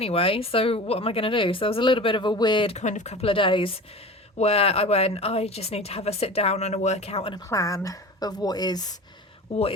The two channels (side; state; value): both; normal; correlation 0.35